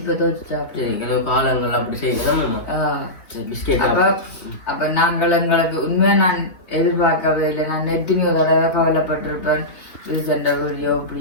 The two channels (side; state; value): right; late; 3.4 ms